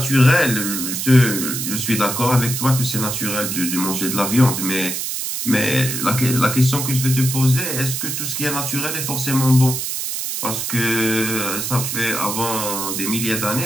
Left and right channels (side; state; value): right; noise; hiss, 3 dB below the sound